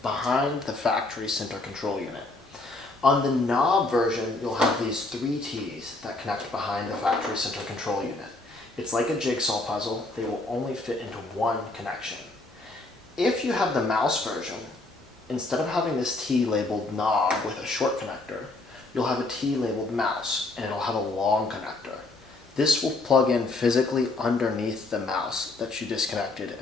behind the factory center control unit. On the knob version, you'll have these 3 T's that connect behind the factory center control unit. It's like a jigsaw puzzle. They will only fit into one connection. If you have the mouse version, instead of having this T labeled knob with a short connector, you'll have a T labeled mouse, and it'll have a long connector. This will plug in physically underneath the mouse that you disconnected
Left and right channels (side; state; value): right; quieter; 3.1 dB